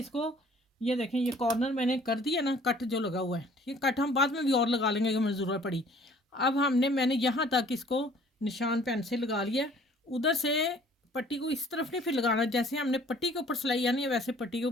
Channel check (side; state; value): both; normal; correlation 0.55